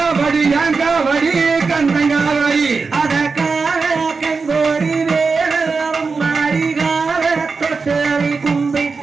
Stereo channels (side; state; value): left; quieter; 4.6 dB